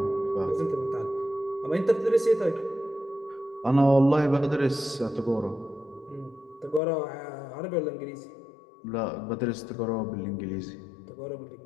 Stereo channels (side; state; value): right; drops out; at 6.8 s